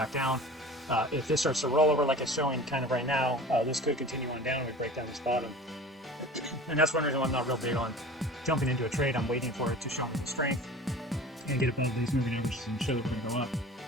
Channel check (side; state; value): both; normal; correlation 0.40